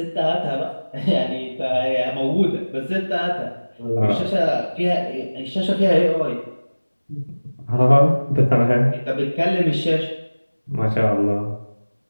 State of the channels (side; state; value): both; inverted; correlation -1.00